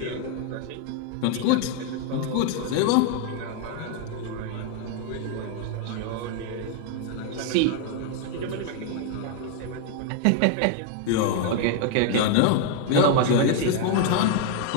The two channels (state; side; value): different; both; correlation 0.00